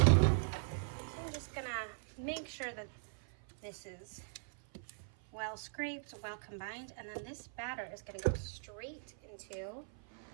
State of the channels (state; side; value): silent; left; 51 dB below the other